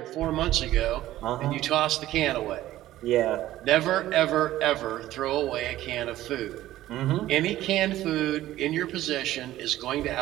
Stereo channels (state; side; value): quieter; left; 14.6 dB